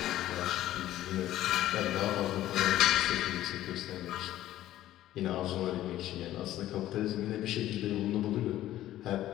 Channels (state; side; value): quieter; right; 13.8 dB